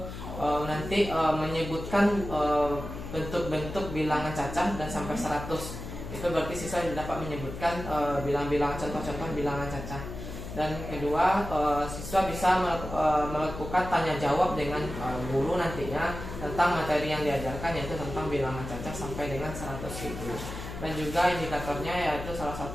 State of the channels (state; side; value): noise; left; hum, 9 dB below the sound